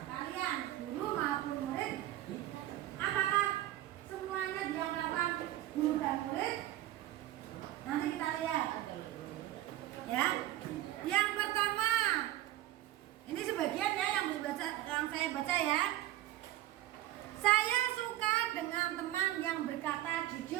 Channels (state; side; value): quieter; left; 14.3 dB